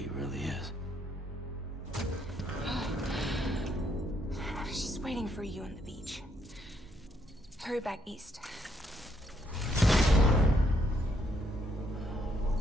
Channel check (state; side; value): normal; both; correlation 0.73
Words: really is. She's waiting for you on the beach. Hurry back east.